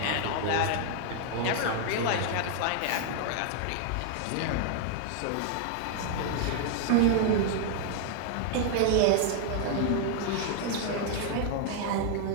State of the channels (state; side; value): different; both; correlation 0.00